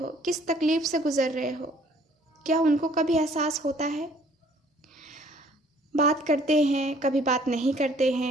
किस तकलीफ़ से गुज़र रहे हो। क्या उनको कभी एहसास होता है। बात करते हैं, कभी बात नहीं करते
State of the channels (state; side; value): normal; both; correlation 0.58